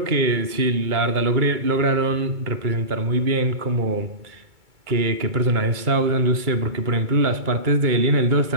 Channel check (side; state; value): left; late; 2.3 ms